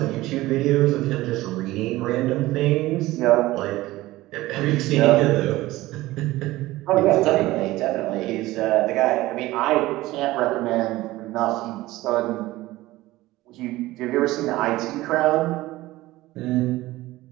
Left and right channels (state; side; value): quieter; left; 17.8 dB